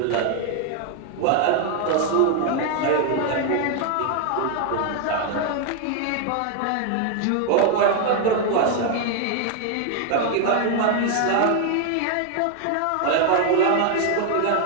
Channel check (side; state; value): both; different; correlation 0.00